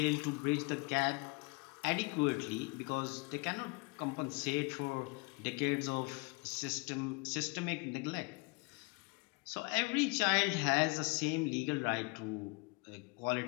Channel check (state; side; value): quieter; right; 28.8 dB